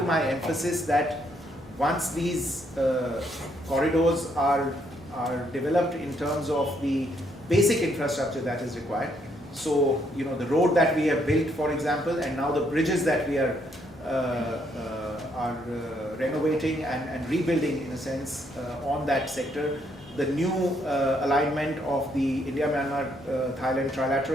my emphasis that once these corridors are developed in terms of the basic infrastructure that is required, so the road that we have built, for example, and now the bridges that we are renovating and rebuilding in a sense on that sector, the new alignment of the India-Myanmar-Thailand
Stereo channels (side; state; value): both; normal; correlation 0.72